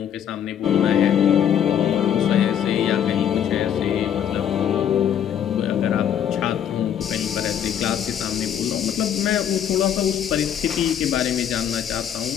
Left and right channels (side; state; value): right; quieter; 9.4 dB